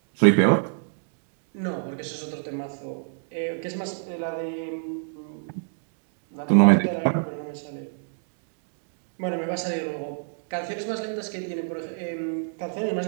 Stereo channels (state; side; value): silent; left; digital silence